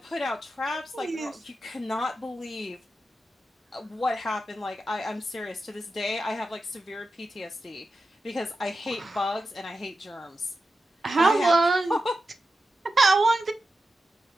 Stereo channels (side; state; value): both; normal; correlation 0.91